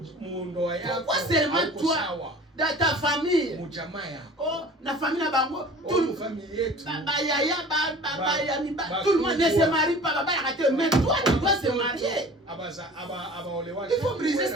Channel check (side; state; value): both; normal; correlation 0.43